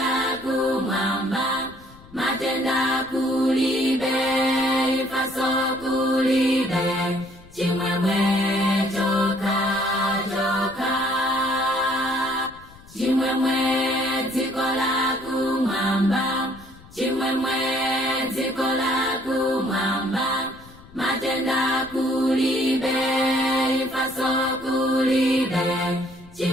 kumwamba, matenda kulibe, ifaso kulibe, chimwemwe choka choka. Chimwemwe dziko la kumwamba, chimwemwe dziko la kumwamba, matenda kulibe, ifaso kulibe,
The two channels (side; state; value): left; noise; rumble, 22 dB below the sound